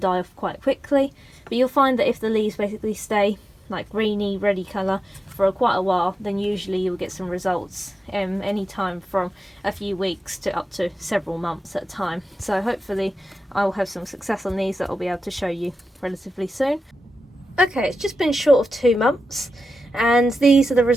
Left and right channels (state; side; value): normal; both; correlation 0.91